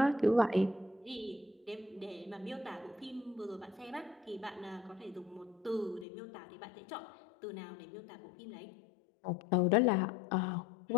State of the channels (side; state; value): right; drops out; at 6.1 s